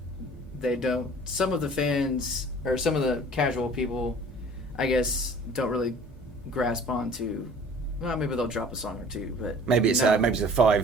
some of the fans or some of the casual people, I guess, don't really grasp onto, well, maybe they'll drop a song or two, but maybe it's a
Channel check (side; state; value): both; normal; correlation 0.48